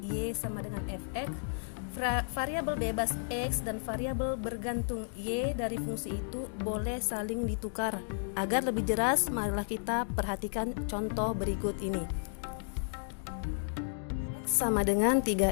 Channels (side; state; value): right; silent; digital silence